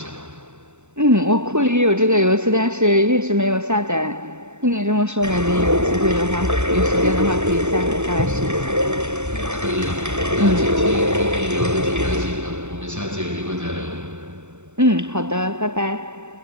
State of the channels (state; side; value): late; left; 0.83 ms